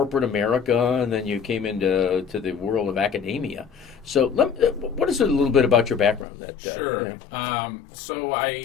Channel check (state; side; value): drops out; right; at 6.2 s